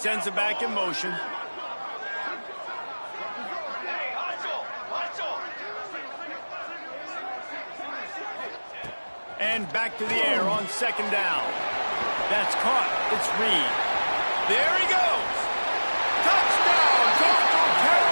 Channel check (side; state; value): both; inverted; correlation -1.00